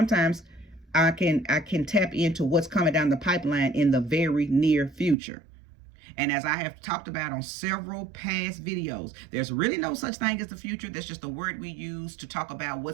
I can tap into what's coming down the pipeline in the very near future. And as I have talked about on several past videos, there's really no such thing as the future. That's just a word we use to talk about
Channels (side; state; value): left; drops out; at 5.2 s